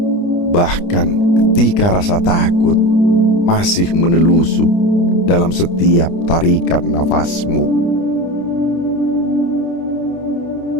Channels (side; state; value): right; late; 29 ms